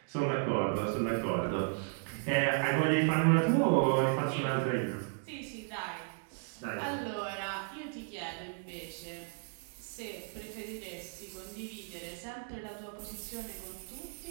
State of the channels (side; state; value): left; silent; 55 dB below the other